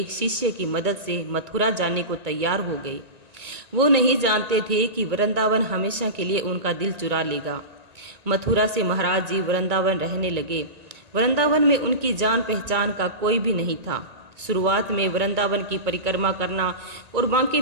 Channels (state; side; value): late; left; 1.9 ms